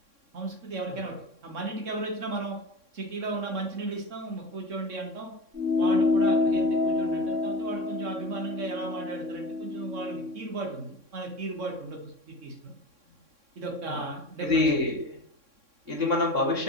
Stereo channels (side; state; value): left; late; 3.6 ms